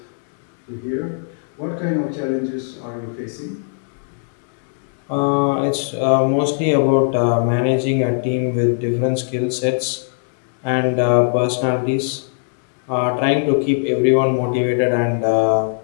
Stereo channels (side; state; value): right; silent; 66 dB below the other